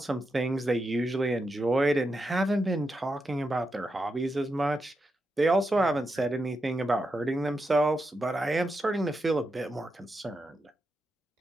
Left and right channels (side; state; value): both; normal; correlation 0.86